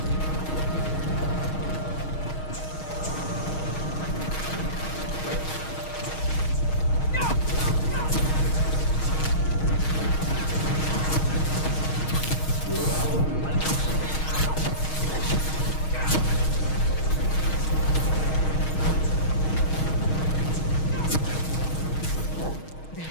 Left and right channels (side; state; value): right; late; 6.4 ms